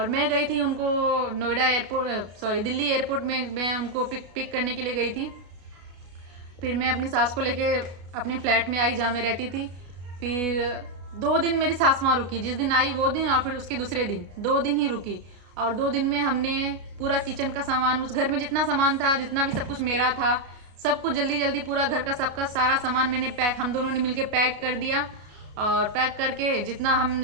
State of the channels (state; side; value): late; left; 33 ms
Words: मैं गई थी उनको दिल्ली एयरपोर्ट में मैं उनको पिक करने के लिए गई थी। फिर मैं अपनी सास को लेके अपने फ्लैट में आई जहाँ मैं रहती थी। फिर 2 दिन मेरी सास वहाँ रुकी, जिस दिन आई वो दिन और फिर उसके दूसरे दिन, 2 दिन ही रुकी। और 2 दिन में हमने पूरा किचन का सामान, उस घर में जितना सामान था, जितना भी सब कुछ मेरा था, सब कुछ जल्दी पूरा घर का सबका सारा सामान मैंने हम दोनों ने मिलके पैक कर दिया। और पैक करके जितना हम